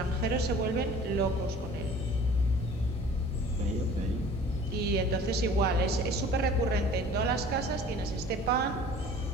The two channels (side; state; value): both; normal; correlation 0.47